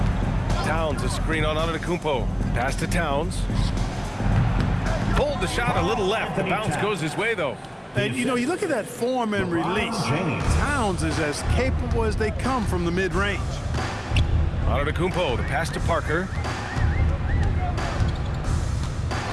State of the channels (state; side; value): identical; both; correlation 1.00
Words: Towns, a screen on Antetokounmpo. Pass to Towns. Pulled the shot a little left. The bounce goes his way, though. And, you know, you look at that form and release. Towns is as capable as they come from the mid-range. Antetokounmpo, the pass to Parker.